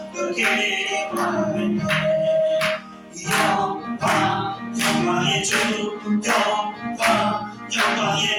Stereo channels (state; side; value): identical; both; correlation 1.00